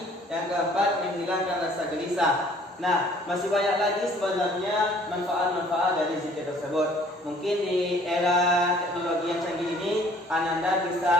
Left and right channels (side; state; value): both; normal; correlation 0.56